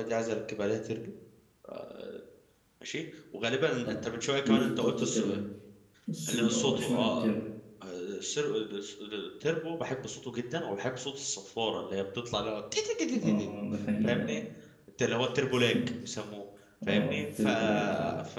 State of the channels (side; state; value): both; identical; correlation 1.00